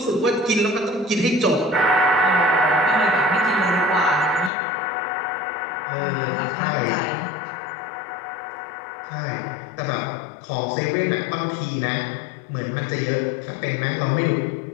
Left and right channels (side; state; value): right; drops out; at 4.5 s